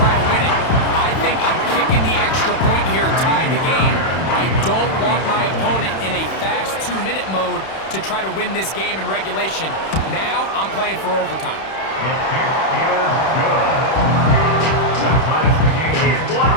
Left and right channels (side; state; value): right; late; 31 ms